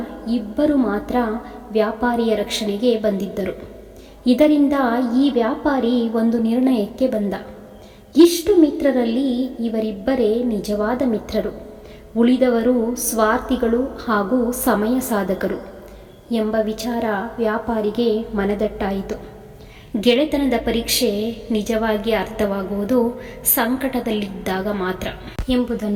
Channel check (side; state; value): both; identical; correlation 1.00